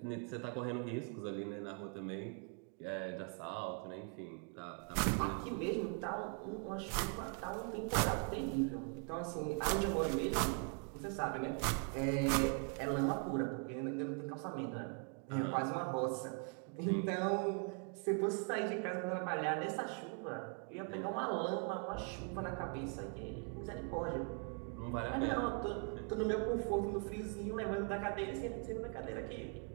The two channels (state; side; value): quieter; left; 39.6 dB